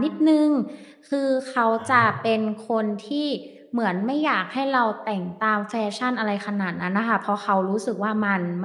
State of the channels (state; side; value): identical; both; correlation 1.00